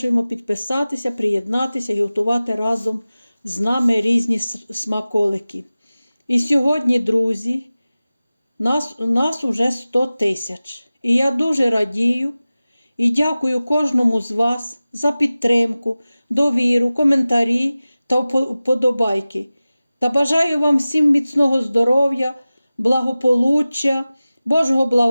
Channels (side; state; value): both; inverted; correlation -0.97